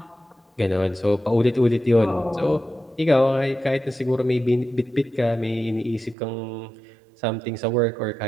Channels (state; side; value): drops out; left; at 6.2 s